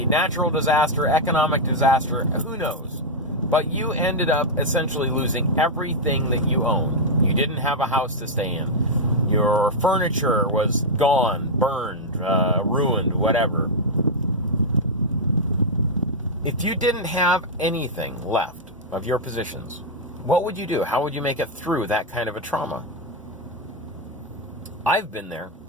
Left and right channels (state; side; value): normal; both; correlation -0.02